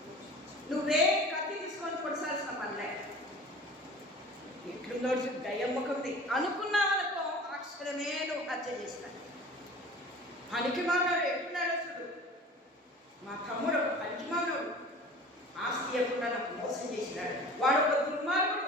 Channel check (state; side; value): normal; both; correlation 0.41